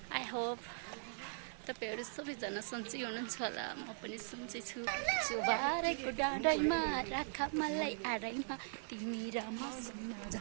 I hope तपाईँहरू सबैजना सन्चै हुनुहुन्छ होला। म पनि सन्चै छु। चुबारेको डाँडैमा राख मलाई आडैमा तिमी र मसँग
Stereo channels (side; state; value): left; silent; 51 dB below the other